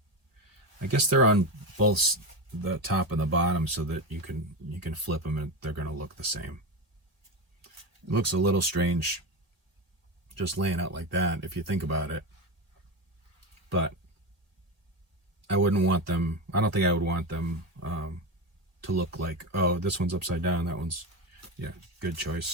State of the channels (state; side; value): late; left; 1.9 ms